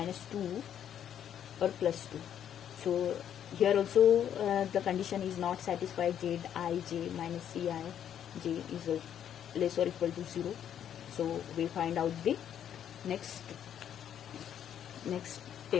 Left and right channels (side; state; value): right; quieter; 9.6 dB